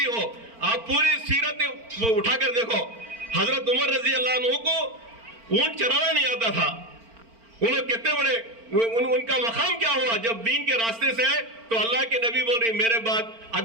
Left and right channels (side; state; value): left; late; 4.4 ms